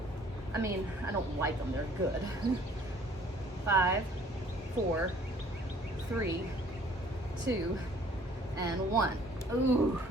I mean, I don't like them, they're good. 5, 4, 3, 2, and 1. Ooh,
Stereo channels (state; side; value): normal; both; correlation 0.56